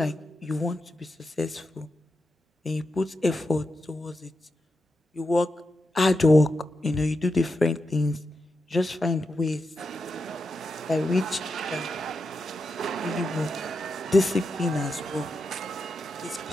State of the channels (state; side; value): normal; both; correlation 0.87